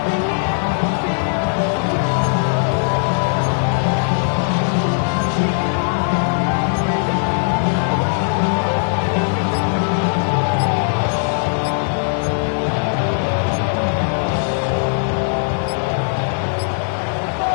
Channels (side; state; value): right; silent; 59 dB below the other